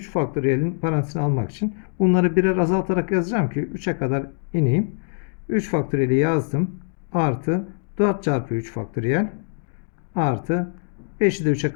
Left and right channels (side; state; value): right; silent; digital silence